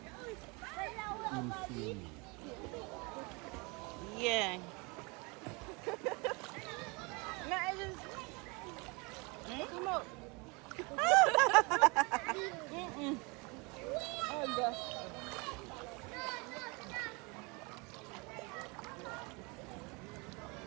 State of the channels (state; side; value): quieter; left; 28.7 dB